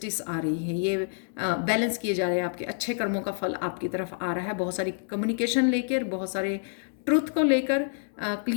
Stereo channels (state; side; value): silent; right; digital silence